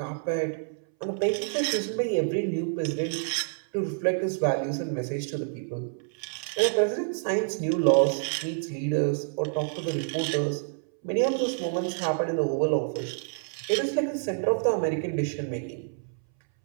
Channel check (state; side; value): silent; left; 59 dB below the other